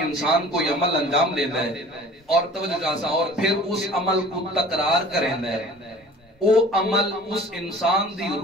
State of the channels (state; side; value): normal; both; correlation 0.46